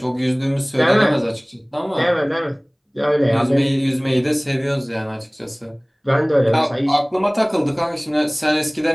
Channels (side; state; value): both; identical; correlation 1.00